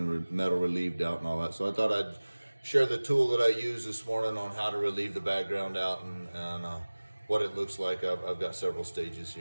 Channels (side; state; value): both; inverted; correlation -1.00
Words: the metal relieved out and all that. So I thought I'd share the tool that I used this morning on how to relieve the background out and what it looks like. I've got several stages